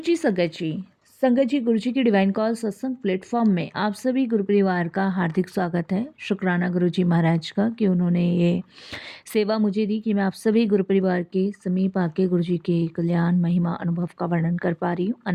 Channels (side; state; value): both; identical; correlation 1.00